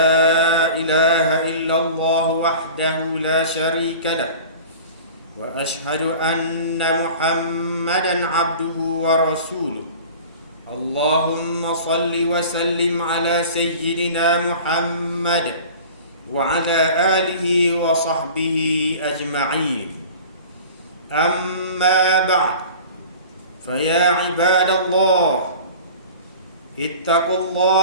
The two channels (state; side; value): inverted; both; correlation -0.40